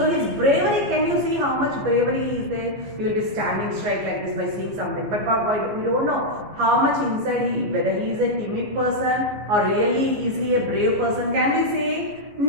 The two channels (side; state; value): left; late; 14 ms